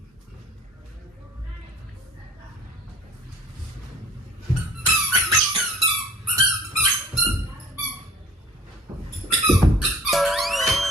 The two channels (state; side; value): normal; both; correlation 0.49